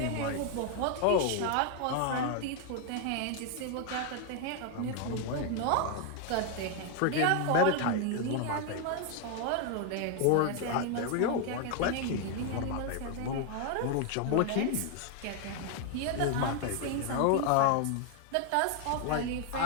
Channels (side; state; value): both; different; correlation 0.01